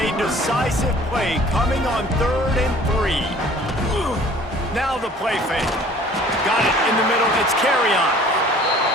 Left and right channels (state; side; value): normal; both; correlation 0.51